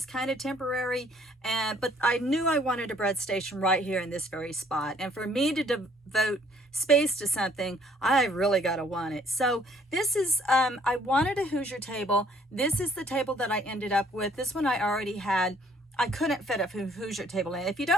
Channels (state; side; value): normal; both; correlation 0.61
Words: kind of temporary, but I knew I wanted a bread station right here in this very spot. And for me to devote space to something, I really got to want it. So this is, I wanted a Hoosier table. This is the table that I ended up with. This one I already had. I couldn't fit a Hoosier table in. If you